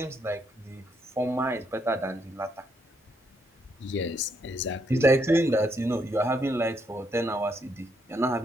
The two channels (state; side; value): normal; both; correlation 0.75